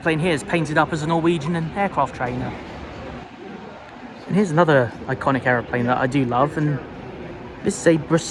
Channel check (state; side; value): identical; both; correlation 1.00